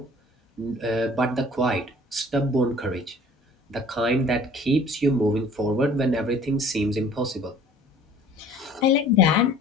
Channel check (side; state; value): both; normal; correlation 0.51